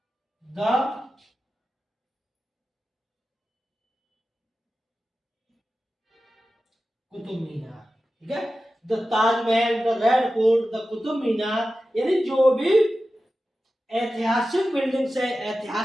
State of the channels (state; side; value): normal; both; correlation 0.94